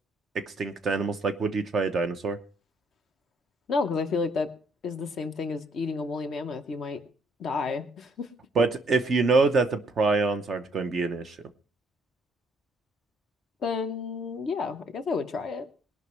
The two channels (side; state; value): both; normal; correlation 0.66